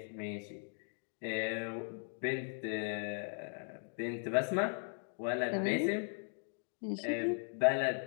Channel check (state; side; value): silent; right; 52 dB below the other